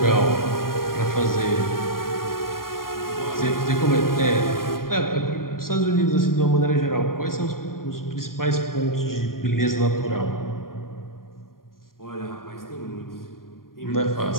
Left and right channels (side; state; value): right; late; 0.91 ms